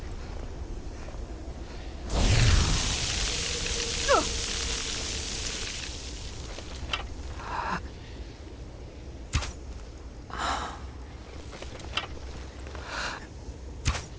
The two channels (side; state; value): both; identical; correlation 1.00